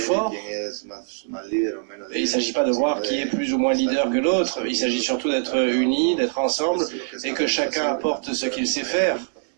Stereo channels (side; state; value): left; silent; 63 dB below the other